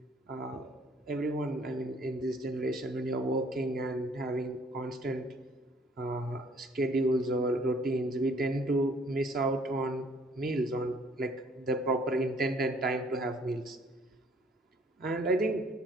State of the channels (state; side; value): normal; both; correlation 0.60